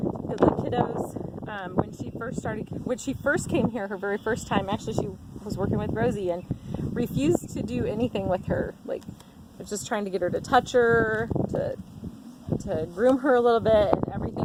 kiddos, when she first came here, her very first time, actually she was working with Rosie and refused to do anything with her. Like, was just trying to get her to touch her, to groom her a little bit, and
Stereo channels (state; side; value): identical; both; correlation 1.00